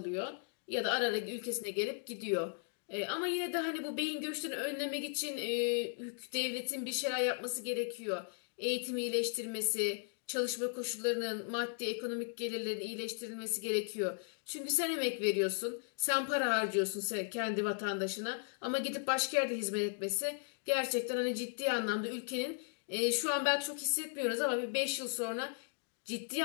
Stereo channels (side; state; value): right; silent; 53 dB below the other